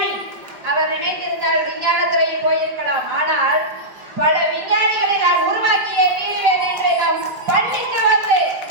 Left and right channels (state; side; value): late; left; 5.3 ms